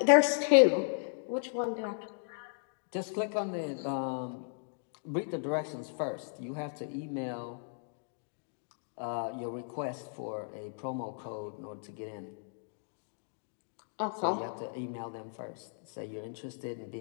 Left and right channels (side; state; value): right; silent; digital silence